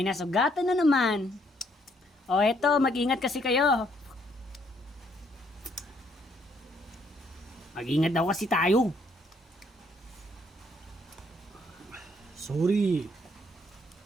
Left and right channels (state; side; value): normal; both; correlation 0.69